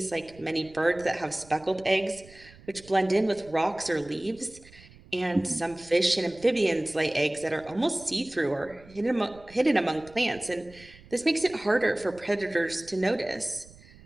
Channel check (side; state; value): right; noise; rumble, 23 dB below the sound